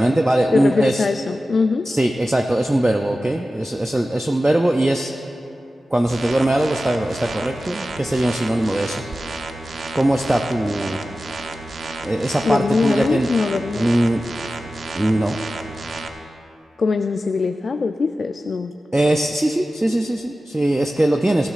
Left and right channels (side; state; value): both; normal; correlation 0.94